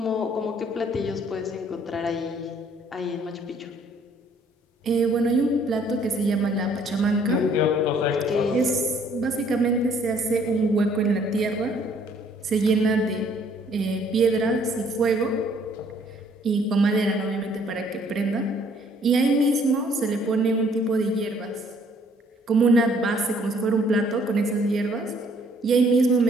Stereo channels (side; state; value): both; normal; correlation 0.62